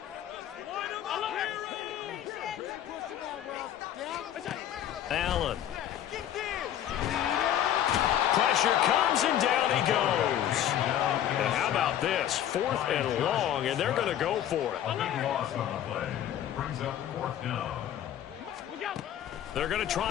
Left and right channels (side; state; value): right; quieter; 11.0 dB